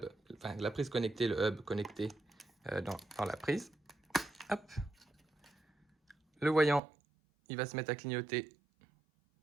enfin la prise connectée, le hub connecté dans la prise. Hop. Le voyant, il va se mettre à clignoter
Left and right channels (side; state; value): left; drops out; at 6.8 s